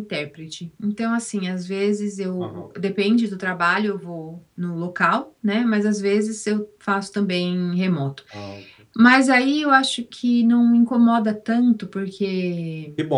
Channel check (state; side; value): identical; both; correlation 1.00